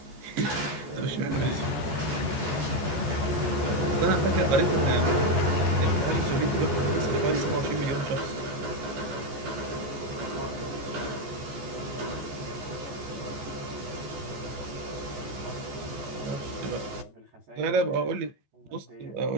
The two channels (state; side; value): late; left; 14 ms